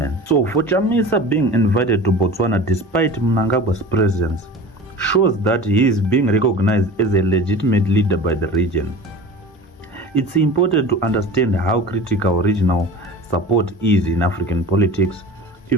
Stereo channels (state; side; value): normal; both; correlation 0.37